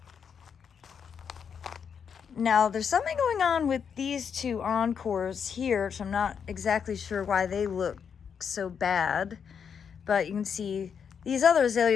Now, there's something going on with these two encores here, which I'm not exactly sure why they look so bad. But you can see these other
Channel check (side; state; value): right; quieter; 7.1 dB